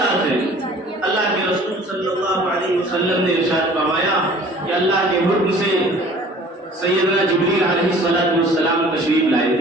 ہے؟ اللہ کے رسول صلی اللہ علیہ وسلم نے ارشاد فرمایا کہ اللہ کے حکم سے سیدنا جبریل علیہ السلام تشریف لائے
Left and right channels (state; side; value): normal; both; correlation 0.49